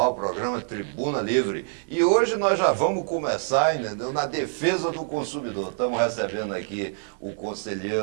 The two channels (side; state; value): left; silent; 61 dB below the other